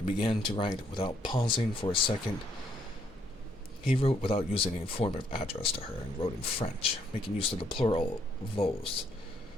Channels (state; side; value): normal; both; correlation 0.70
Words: began to write without pausing for a second. He wrote without using any form of address to her, and wrote in French, making use of the plural vos,